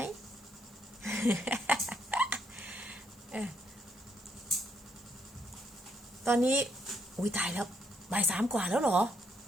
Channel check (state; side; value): normal; both; correlation 0.74